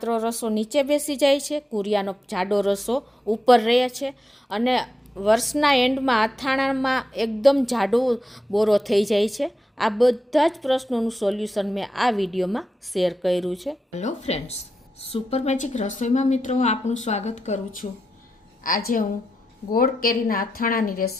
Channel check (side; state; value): both; normal; correlation 0.88